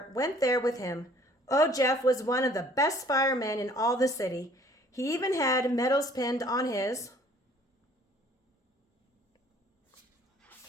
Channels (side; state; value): both; normal; correlation 0.56